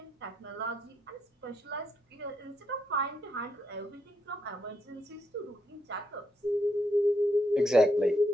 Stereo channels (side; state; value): both; normal; correlation 0.78